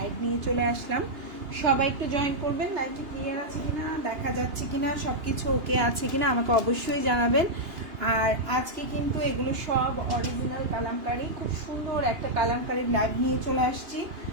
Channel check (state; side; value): late; left; 2.8 ms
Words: নিয়ে চলে আসলাম। সবাই একটু জয়েন করবেন। লাইভটি ক্লিয়ার আছে কিনা, দেখা যাচ্ছে কিনা, সবকিছু ওকে আছে কিনা আমাকে অবশ্যই জানাবেন। আর আজকে কিন্তু এগুলো সব অরিজিনাল কালামকারী। খুব সুন্দর একটা কালামকারীর লাইভ নিয়ে চলে আসছি।